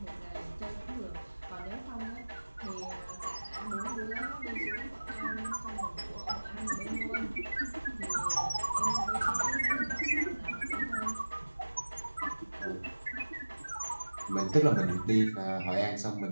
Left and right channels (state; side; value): inverted; both; correlation -1.00